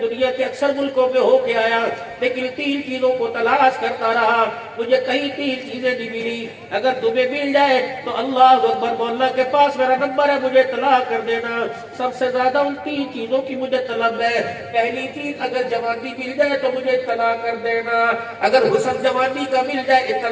کے اکثر ملکوں میں ہو کے آیا, لیکن 3 چیزوں کو تلاش کرتا رہا, مجھے کہیں 3 چیزیں نہیں ملی. اگر تمہیں مل جائے تو اللہ اکبر, مولا کے پاس میرا نمبر ہے, مجھے اطلاع کر دینا. سب سے زیادہ ان 3 چیزوں کی مجھے طلب ہے. پہلی چیز, اگر جوانی مل جائے تو مجھے اطلاع کر دینا. اگر حسن جوانی کا مل جائے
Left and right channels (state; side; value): identical; both; correlation 1.00